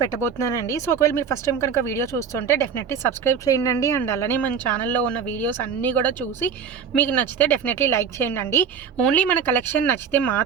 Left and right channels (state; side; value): quieter; left; 6.8 dB